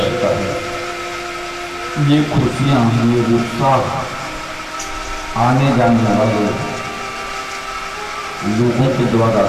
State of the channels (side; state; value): both; identical; correlation 1.00